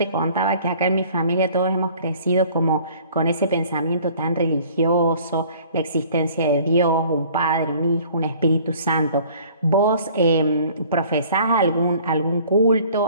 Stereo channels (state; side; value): inverted; both; correlation -0.52